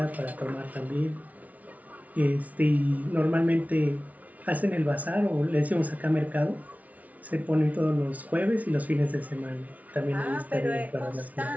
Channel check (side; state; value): left; late; 0.071 ms